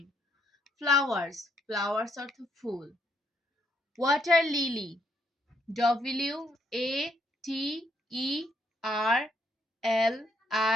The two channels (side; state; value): both; normal; correlation 0.73